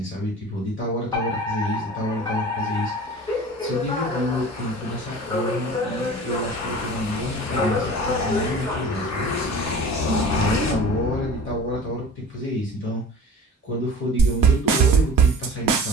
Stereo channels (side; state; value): both; normal; correlation 0.40